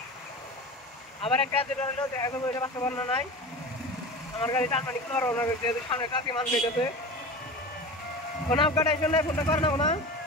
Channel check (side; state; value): both; normal; correlation 0.32